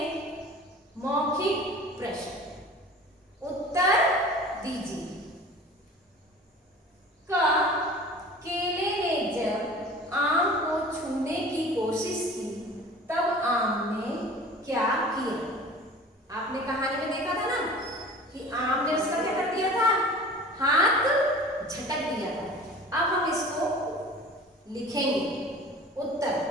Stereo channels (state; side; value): normal; both; correlation 0.41